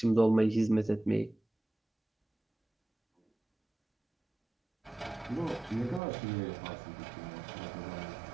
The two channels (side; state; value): left; drops out; at 6.0 s